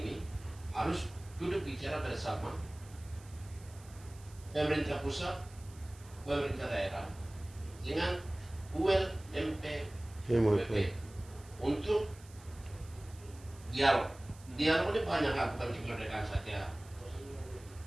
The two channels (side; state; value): right; noise; hiss, 23 dB below the sound